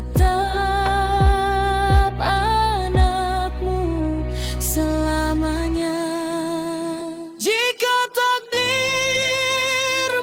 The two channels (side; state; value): both; identical; correlation 1.00